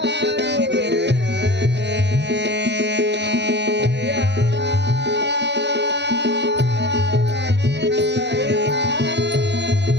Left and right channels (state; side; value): late; left; 0.50 ms